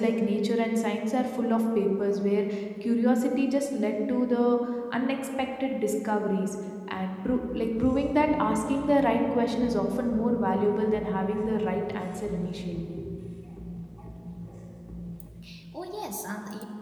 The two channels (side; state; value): both; identical; correlation 1.00